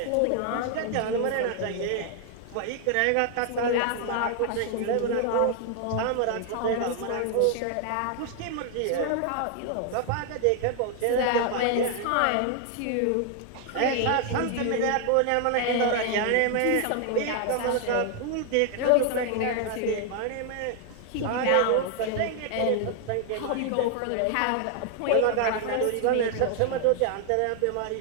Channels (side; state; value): both; different; correlation 0.00